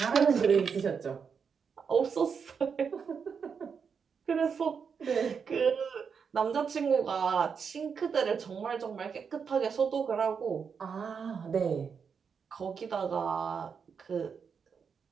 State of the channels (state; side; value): quieter; left; 6.3 dB